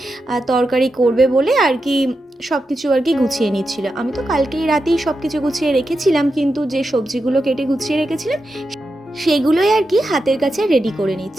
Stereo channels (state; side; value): normal; both; correlation 0.88